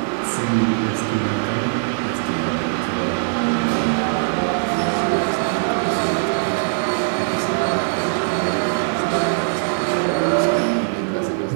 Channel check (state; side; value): silent; left; 56 dB below the other